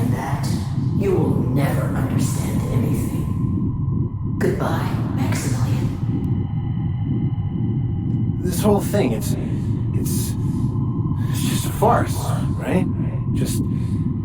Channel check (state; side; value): identical; both; correlation 1.00